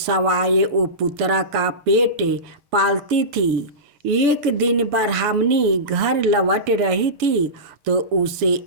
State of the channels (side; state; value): left; late; 6.9 ms